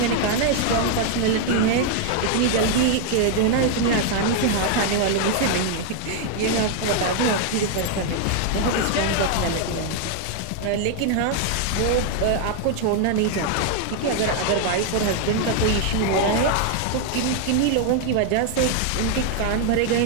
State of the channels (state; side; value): different; both; correlation 0.00